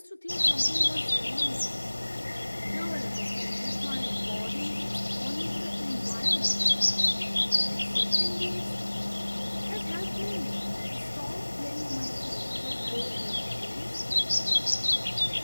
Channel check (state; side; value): inverted; both; correlation -1.00